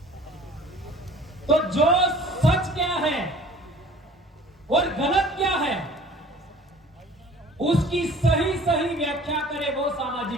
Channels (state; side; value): normal; both; correlation 0.48